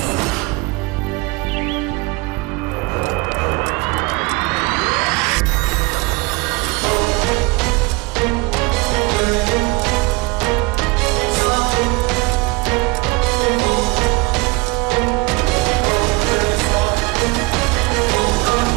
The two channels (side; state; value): left; quieter; 25.1 dB